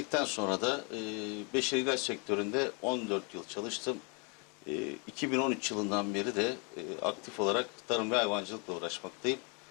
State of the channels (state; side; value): quieter; right; 33.7 dB